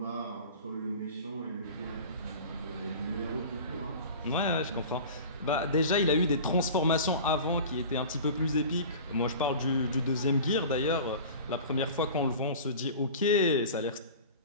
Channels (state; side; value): inverted; both; correlation -0.38